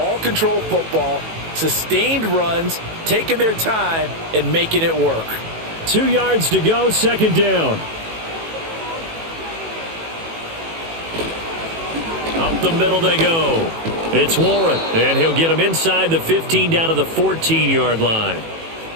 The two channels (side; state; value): left; late; 18 ms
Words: control football, sustained runs, taking their time, and making it work. 2 yards to go, 2nd down. Up the middle they go. It's Warren, and he'll get him inside the 15 down to the 14-yard line.